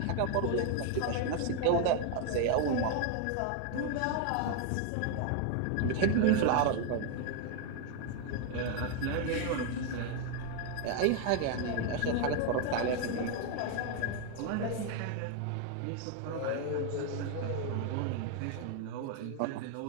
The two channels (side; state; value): both; different; correlation 0.01